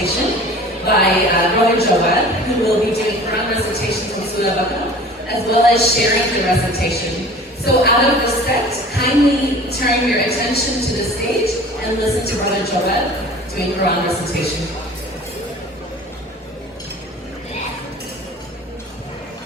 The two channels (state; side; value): normal; both; correlation 0.43